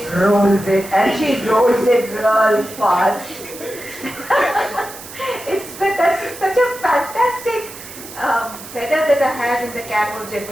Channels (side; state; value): right; noise; hiss, 14 dB below the sound